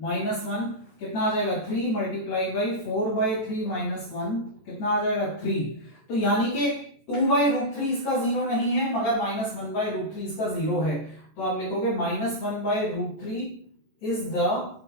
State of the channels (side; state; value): right; late; 14 ms